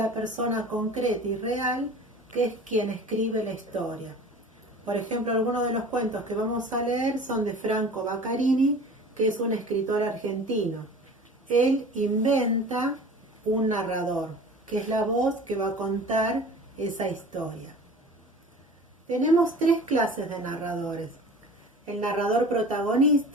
persona concreta y real que es quien escribe la historia. Por ejemplo, algunos de los cuentos que vamos a leer son de Franco Baccarini, que es un escritor argentino. Él inventa un narrador, que es la voz que va a contar esa historia. Tenemos tres clases de narradores. El narrador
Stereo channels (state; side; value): normal; both; correlation 0.41